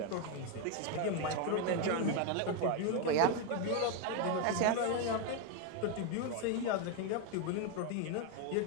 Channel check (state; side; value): different; both; correlation 0.02